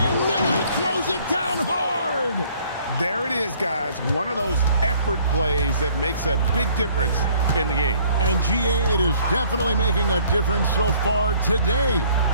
Miller throws it down hard. There it is, guys. One of those effort plays that makes a big difference in the game. And GA, it is definitely making a difference so far today.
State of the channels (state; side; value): inverted; both; correlation -0.59